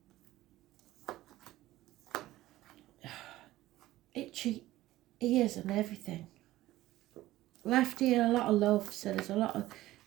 Itchy ears and everything. Left ear, a lot of love, so there's a lot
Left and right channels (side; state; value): left; quieter; 16.1 dB